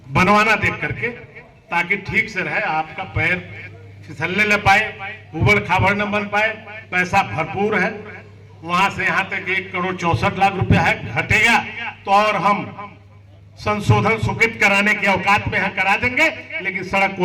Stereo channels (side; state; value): both; identical; correlation 1.00